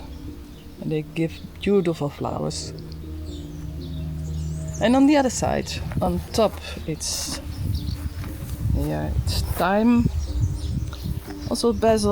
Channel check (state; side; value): identical; both; correlation 1.00